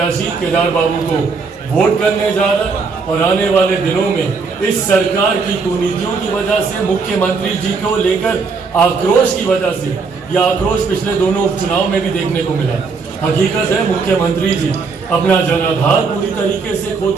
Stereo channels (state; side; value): quieter; left; 4.8 dB